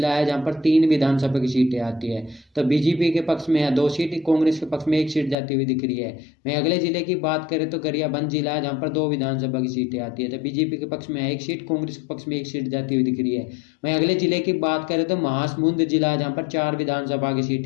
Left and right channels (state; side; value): drops out; right; at 5.4 s